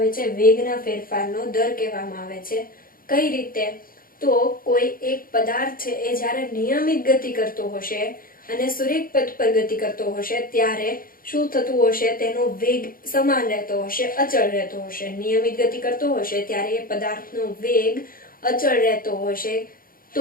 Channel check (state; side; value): late; right; 0.41 ms